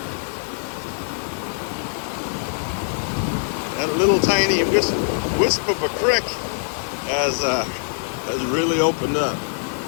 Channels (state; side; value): silent; right; digital silence